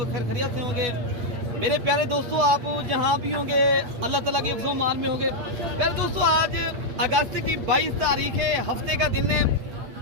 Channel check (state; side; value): late; left; 8.5 ms